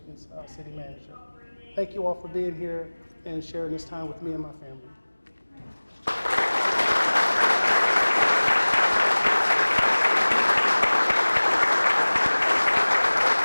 City Manager. Thank you all for being here and sharing this time with me and my family.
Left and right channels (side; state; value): both; inverted; correlation -1.00